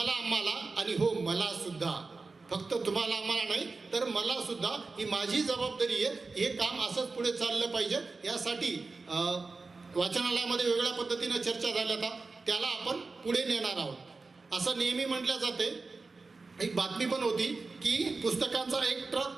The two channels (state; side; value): quieter; left; 3.9 dB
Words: आम्हाला आणि हो मला सुद्धा, फक्त तुम्हाला आम्हाला नाही तर मला सुद्धा, ही माझी जबाबदारी आहे. हे काम असंच पुढे चाललं पाहिजे. यासाठी वाचनालयामध्ये वेगळ्या पद्धतीनं चर्चा झाल्या, त्याला आपण पुढे नेणार आहोत. असं नेहमी म्हटलं जाते. एक बातमी पण होती की पुस्तकांचा एक